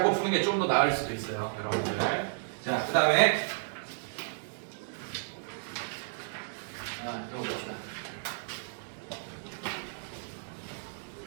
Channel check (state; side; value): silent; left; 56 dB below the other